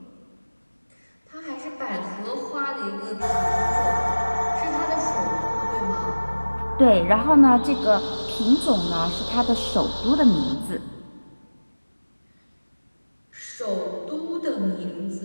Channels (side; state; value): both; inverted; correlation -1.00